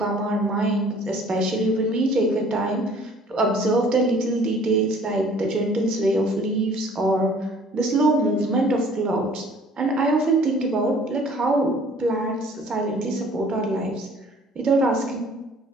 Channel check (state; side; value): normal; both; correlation 0.54